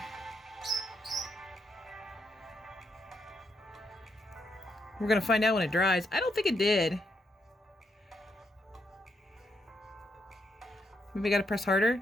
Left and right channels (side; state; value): both; normal; correlation 0.79